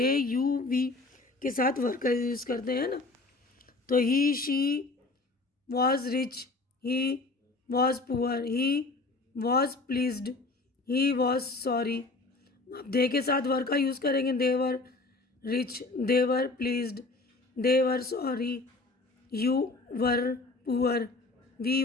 यू वी के साथ वर का यूज़ करते हैं ना। तो he she was rich, he was poor, he was pleased, he was sorry. अब दे के साथ वर का यूज़ करेंगे। They were rich, they were pleased, they were sorry, you were poor, we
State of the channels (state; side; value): quieter; right; 3.4 dB